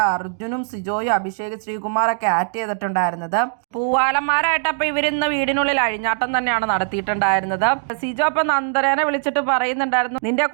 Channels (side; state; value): left; silent; digital silence